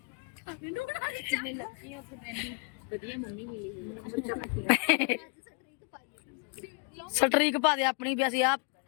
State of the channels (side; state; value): right; quieter; 38.8 dB